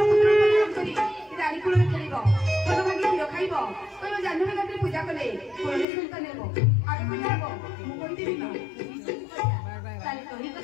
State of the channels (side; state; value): right; drops out; at 5.9 s